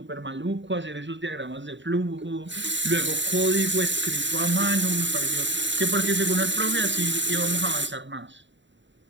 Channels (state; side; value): late; left; 0.53 ms